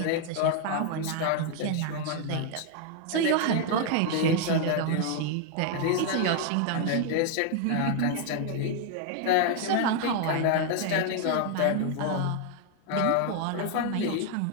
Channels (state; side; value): different; both; correlation 0.00